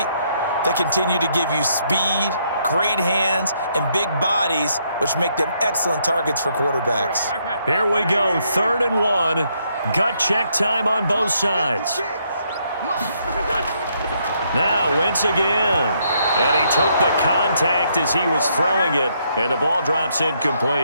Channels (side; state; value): both; inverted; correlation -0.73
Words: They continue to give you speed, great hands, and big bodies, which make them excellent targets for quarterbacks. Here we go, 3rd and 1. Gut check time on both sides. Now Wentz again. And he took the contact as he was throwing it, and the ball drops